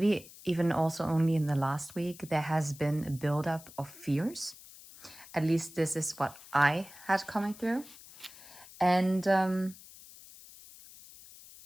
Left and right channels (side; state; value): left; noise; hiss, 19 dB below the sound